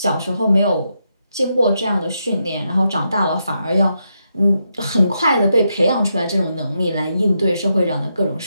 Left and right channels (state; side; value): inverted; both; correlation -0.82